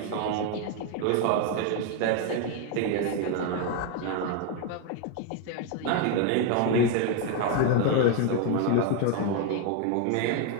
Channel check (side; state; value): both; different; correlation 0.01